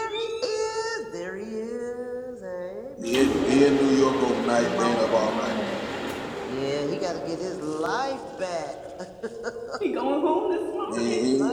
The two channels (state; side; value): identical; both; correlation 1.00